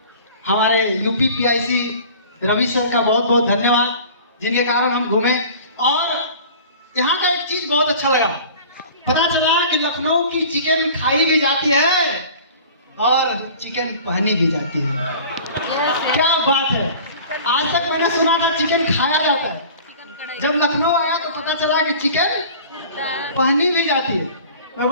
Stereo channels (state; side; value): inverted; both; correlation -0.43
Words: हमारे यूपी पीआईसी रवि सर का बहुत बहुत धन्यवाद, जिनके कारण हम घूमे। और यहाँ का एक चीज बहुत अच्छा लगा, पता चला कि लखनऊ की चिकन खाई भी जाती है और चिकन पहनी भी जाती है। क्या बात है, आज तक मैंने सुना था चिकन खाया जाता है, जब लखनऊ आया तो पता चला कि चिकन पहनी भी जाती है। मैं